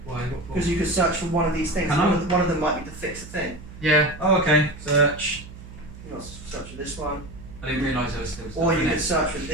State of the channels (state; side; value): noise; right; hum, 16 dB below the sound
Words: Why? What for? because you could search for one of these things. Can I? One of them might be to fix a thing. Yeah. Oh, okay. Search. You might search for this one, I didn't realise there was still stuff or in you it. could search for